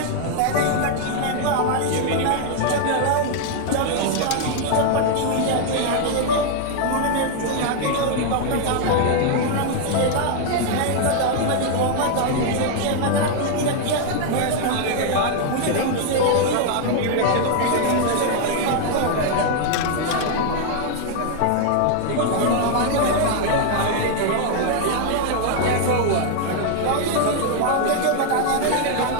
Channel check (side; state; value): both; different; correlation 0.00